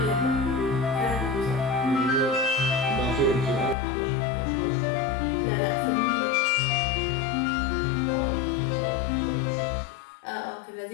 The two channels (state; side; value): drops out; right; at 3.8 s